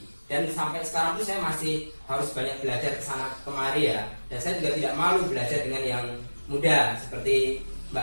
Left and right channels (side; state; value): both; inverted; correlation -1.00